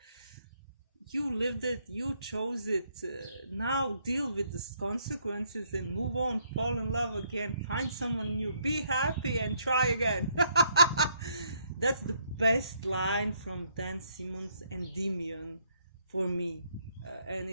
you lived it, you chose it. Now deal with the consequences and move on, fall in love again, find someone new, be happy and try again. That's the best line from Dan Simmons and Demian for me. and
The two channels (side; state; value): both; inverted; correlation -0.71